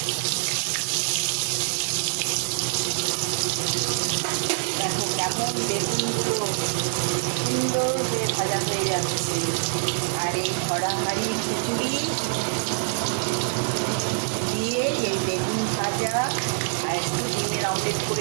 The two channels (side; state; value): left; silent; digital silence